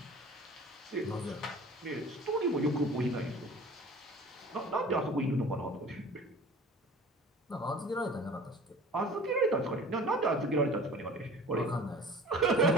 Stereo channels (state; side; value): normal; both; correlation 0.43